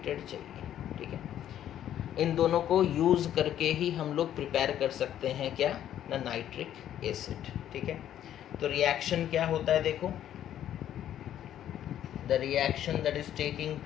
चाहिए। ठीक है, इन दोनों को यूज़ करके ही हम लोग प्रिपेयर कर सकते हैं क्या ना, नाइट्रिक एसिड। ठीक है, तो रिएक्शन क्या होता है देखो, the reaction that is taking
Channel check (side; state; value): right; quieter; 11.1 dB